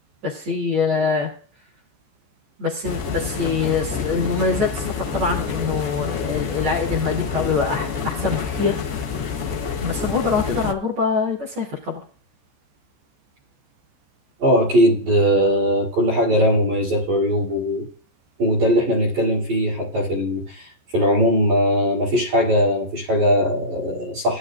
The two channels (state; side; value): late; left; 14 ms